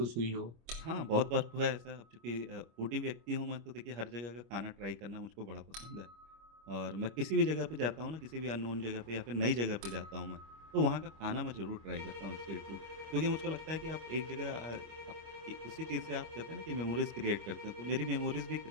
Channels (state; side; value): late; left; 25 ms